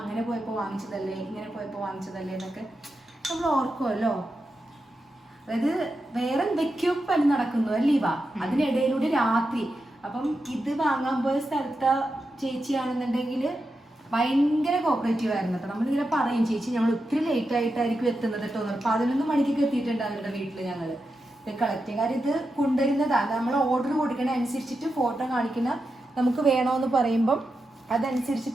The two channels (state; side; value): normal; both; correlation 0.88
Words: പോയപ്പോൾ വാങ്ങിച്ചതല്ലേ, ഇങ്ങനെ പോയപ്പോൾ വാങ്ങിച്ചതല്ലേ എന്നൊക്കെ നമ്മൾ ഓർക്കുമല്ലോ. അതായത് വേറെ എന്തൊക്കെയോ പണി നടക്കുന്നു അല്ലേ വാ, അതിനിടയിലൂടെ രാത്രി. അപ്പം ഇത് വാങ്ങാൻ പോയ സ്ഥലത്തെ ചേച്ചിയാണെന്നുണ്ടെങ്കിൽ ഭയങ്കര കോപ്പറേറ്റീവ് ആയിരുന്നു കേട്ടോ. നമ്മളിങ്ങനെ പറയും, ചേച്ചി ഞങ്ങൾ ഒത്തിരി ലേറ്റ് ആയിട്ടായിരിക്കും എത്തുന്നത് കേട്ടോ. 11 മണിക്കൊക്കെ എത്തിയിട്ടുണ്ട് അവരുടെ വീട്ടിൽ ഞങ്ങൾ ഇത് കളക്ട് ചെയ്യും. കാര്യം ഇത് കൊണ്ടുവരുന്നതാണ്, നമ്മൾ ഓർഡർ കൊടുക്കണ അനുസരിച്ചിട്ട് ഫോട്ടോ കാണിക്കുന്ന, നമുക്ക് വേണമെന്ന് പറയുമ്പം